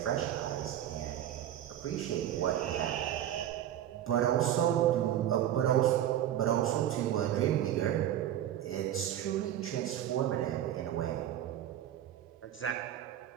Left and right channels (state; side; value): quieter; left; 11.5 dB